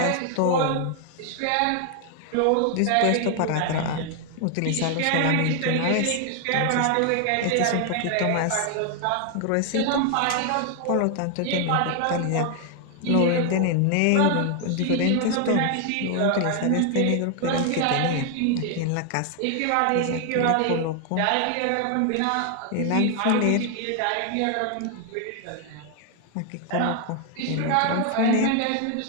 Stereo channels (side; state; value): both; different; correlation 0.00